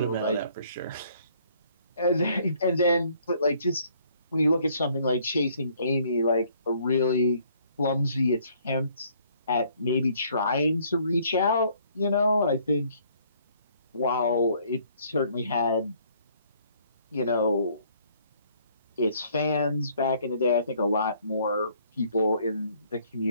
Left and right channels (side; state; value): both; inverted; correlation -0.63